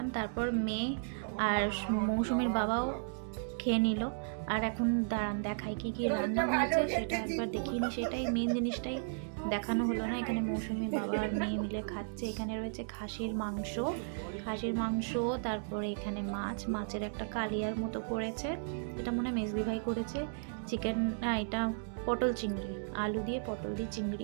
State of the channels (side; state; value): left; silent; digital silence